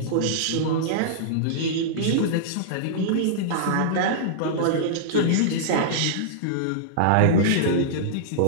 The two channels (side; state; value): both; different; correlation -0.02